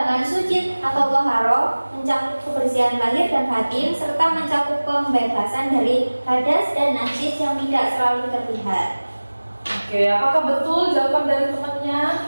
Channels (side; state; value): both; inverted; correlation -1.00